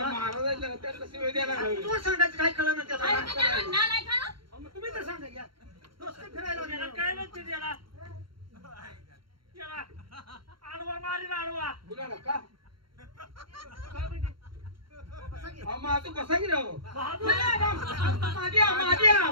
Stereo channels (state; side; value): late; left; 0.73 ms